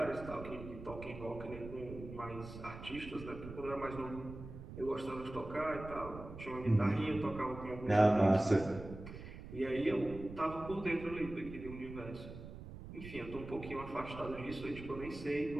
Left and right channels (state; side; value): noise; right; rumble, 12 dB below the sound